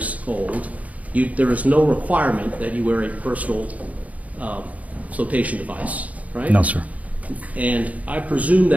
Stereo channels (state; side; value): late; left; 0.070 ms